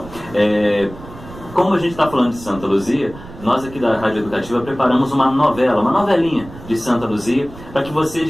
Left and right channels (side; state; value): right; noise; rumble, 16 dB below the sound